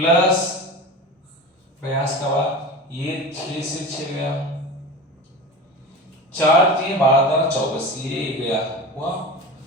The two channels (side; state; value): both; normal; correlation 0.30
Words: प्रयास का बाद ये 6 से 6 गया, 4 3 12 24 ये गया हुआ,